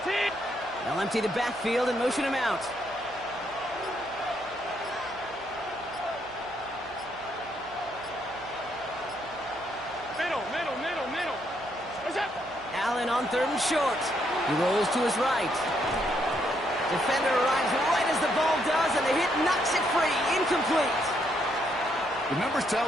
They'll empty the backfield and motion him out. Middle. What's up? Allen on 3rd and short. He rolls to his right. Defender arrives right as the ball does, and the hit knocks it free. Incomplete. The numbers tell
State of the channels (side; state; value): right; noise; hum, 21 dB below the sound